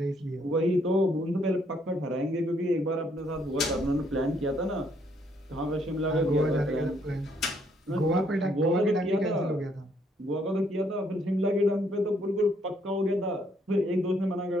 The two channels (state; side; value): normal; both; correlation 0.69